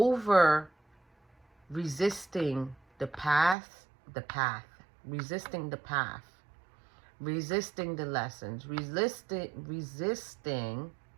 resisting the path, resisting the path, resisting the lessons, resisting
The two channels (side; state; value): left; drops out; at 3.6 s